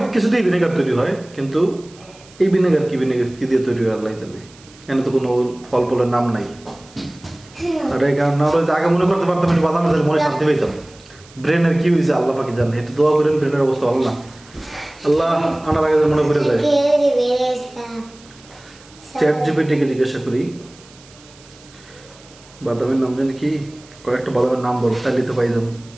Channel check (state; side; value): noise; right; hiss, 25 dB below the sound